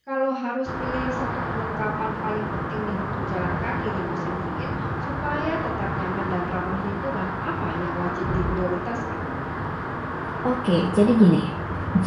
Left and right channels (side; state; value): both; identical; correlation 1.00